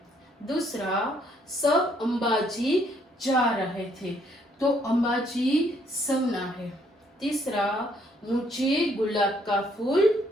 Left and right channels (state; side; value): normal; both; correlation 0.68